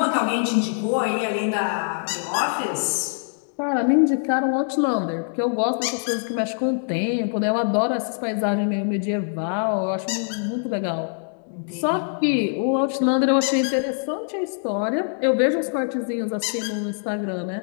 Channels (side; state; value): right; silent; digital silence